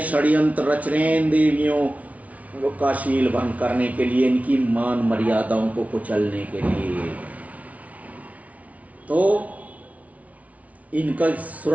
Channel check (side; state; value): left; late; 0.068 ms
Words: षड्यंत्र रच रहे हैं देवियों का शील भंग करने के लिए, इनकी मान मर्यादाओं को कुचलने के लिए। तो इनका